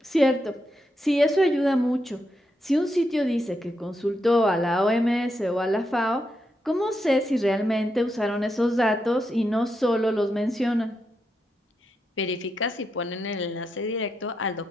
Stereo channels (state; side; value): normal; both; correlation 0.84